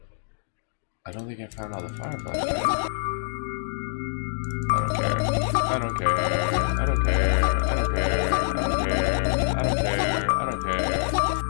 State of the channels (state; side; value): silent; right; digital silence